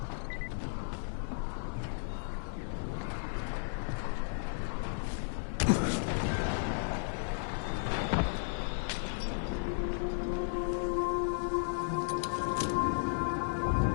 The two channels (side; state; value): right; silent; 55 dB below the other